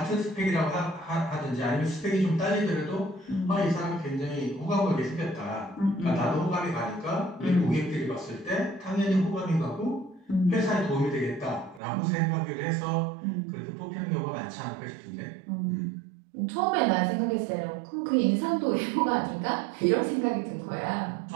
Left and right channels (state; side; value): drops out; left; at 11.8 s